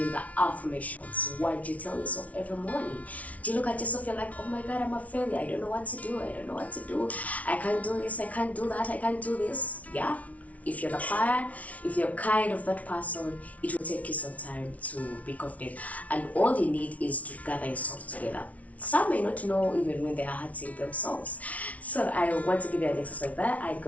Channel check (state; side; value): late; right; 0.068 ms